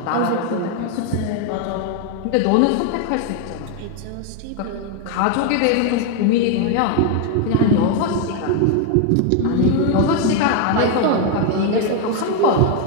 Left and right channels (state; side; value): different; both; correlation 0.01